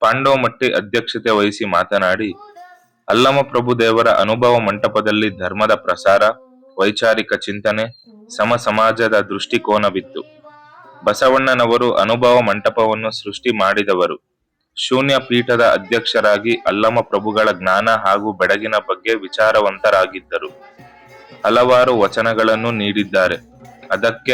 ಪಾಂಡವಮಟ್ಟಿ ಅಧ್ಯಕ್ಷತೆ ವಹಿಸಿ ಮಾತನಾಡಿ, ಅಲ್ಲಮಪ್ರಭು ದೇವರ ಅನುಭವ ಮಂಟಪದಲ್ಲಿ ಧರ್ಮದ ಪ್ರಸಾರ, ವೈಚಾರಿಕ ಚಿಂತನೆ, ಸಮ ಸಮಾಜದ ದೃಷ್ಟಿಕೋನವಿತ್ತು. ಬಸವಣ್ಣನವರು ಅನುಭವ ಮಂಟಪವನ್ನು ಸೃಷ್ಟಿ ಮಾಡಿದವರು. ಶೂನ್ಯ ಪೀಠದ ಅಧ್ಯಕ್ಷರಾಗಿ ಅಲ್ಲಮಪ್ರಭುಗಳ ಜ್ಞಾನ ಹಾಗೂ ಬೆಳಗಿನ ಬಗ್ಗೆ ವಿಚಾರವಂತರಾಗಿದ್ದರು. ಹಲವಾರು ವಚನಗಳನ್ನು ನೀಡಿದ್ದಾರೆ. ಅದಕ್ಕೆ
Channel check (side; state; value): both; identical; correlation 1.00